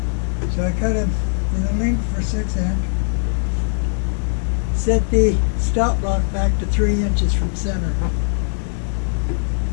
So I cut it in the length for 6 inch. Set the stop block back to 3 inches from center.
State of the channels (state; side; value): silent; right; digital silence